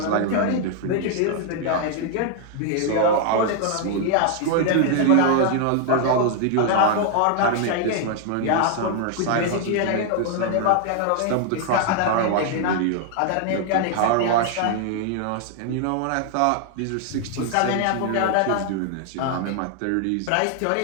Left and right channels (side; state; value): both; different; correlation 0.00